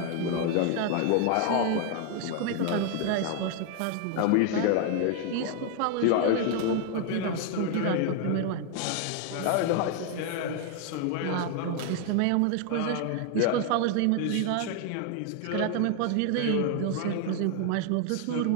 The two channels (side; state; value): both; different; correlation 0.00